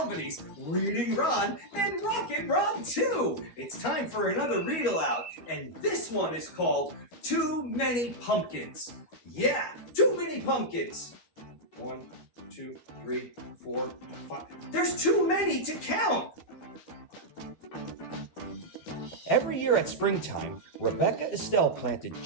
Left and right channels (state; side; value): late; right; 12 ms